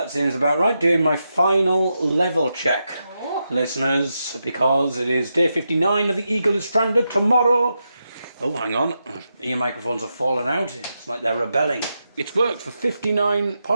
seems about right. Doing my final level check, listeners, because it is day 59 of The Eagle is Stranded tomorrow. Oh, hang on. Ear microphones have fallen out. It's like they're rebelling. It's worked for 59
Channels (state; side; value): inverted; both; correlation -0.87